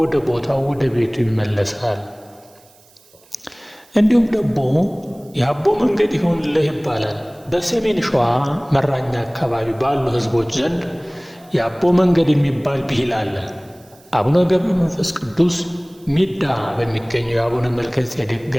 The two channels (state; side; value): noise; right; hiss, 29 dB below the sound